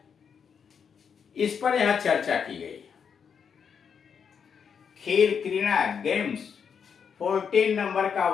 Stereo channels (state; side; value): quieter; right; 6.9 dB